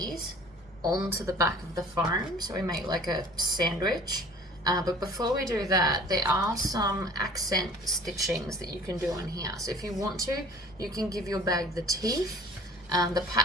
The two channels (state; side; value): normal; both; correlation 0.47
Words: onto the back of the foam so we make like a sandwich. But before we do that, there are some accent stitchings that you can do on here. So if you want to, you can give your bag the teeth. The